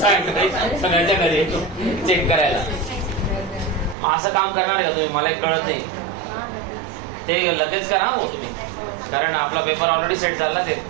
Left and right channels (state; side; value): drops out; left; at 4.0 s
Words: सगळ्यांच्या घरी चेक करायला. मग असं काम करणार का तुम्ही? मला कळत नाही. ते लगेच करा हो तुम्ही, कारण आपला पेपर ऑलरेडी सेट झाला. ते